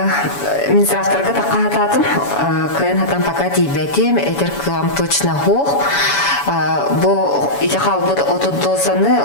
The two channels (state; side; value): late; right; 7.1 ms